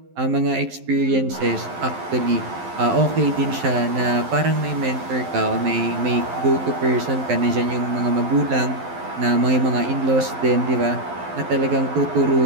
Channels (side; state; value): left; late; 12 ms